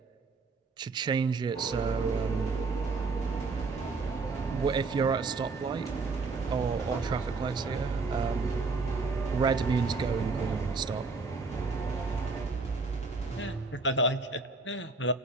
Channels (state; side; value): quieter; left; 4.0 dB